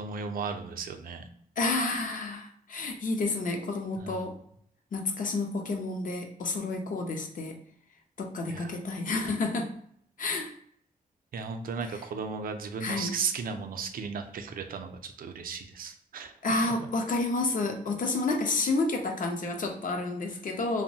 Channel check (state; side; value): normal; both; correlation 0.37